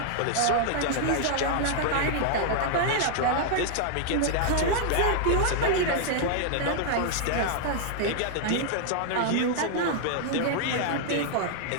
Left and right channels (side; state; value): both; different; correlation -0.01